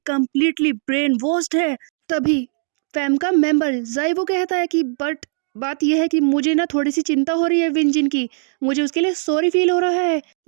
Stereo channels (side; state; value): left; silent; digital silence